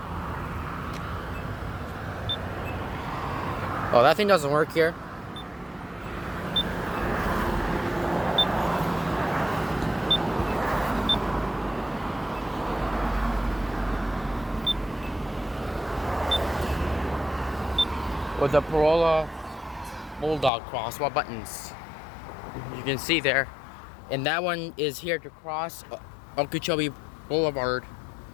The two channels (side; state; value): right; drops out; at 20.5 s